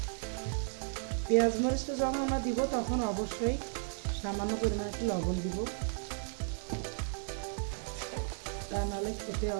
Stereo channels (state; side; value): silent; left; digital silence